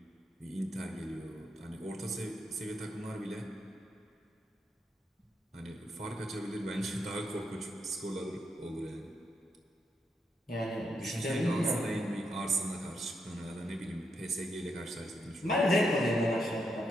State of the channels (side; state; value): both; normal; correlation 0.81